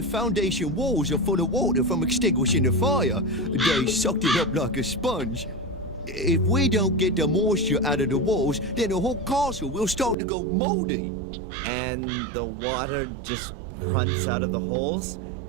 foundation walls are full of water from extinguishing the fire. They sucked it up like a sponge. If we don't get the moisture out of the walls, then the whole castle will start to go moldy. And the water just runs out of the holes?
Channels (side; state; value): left; drops out; at 10.2 s